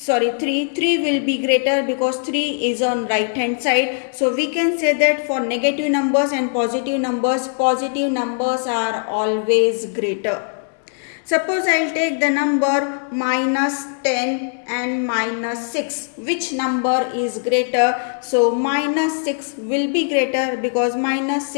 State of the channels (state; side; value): silent; right; 66 dB below the other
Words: will be greater because 3 is on right hand side. So we can say that for negative numbers and positive numbers are always greater. Suppose I'll take the number -10 and -6. Which number is greater? So -6 will be greater because